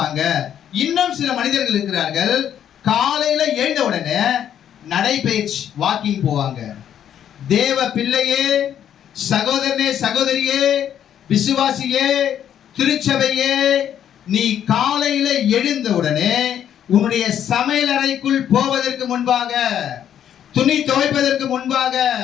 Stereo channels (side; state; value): right; quieter; 9.8 dB